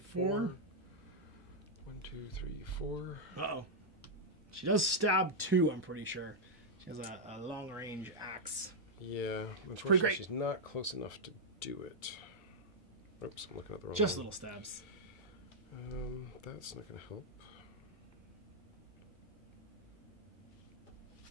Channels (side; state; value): both; normal; correlation -0.04